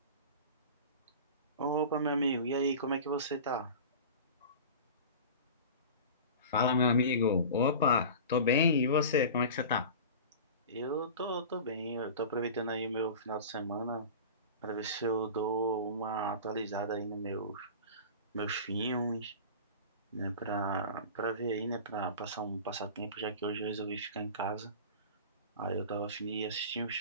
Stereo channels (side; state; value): both; inverted; correlation -0.35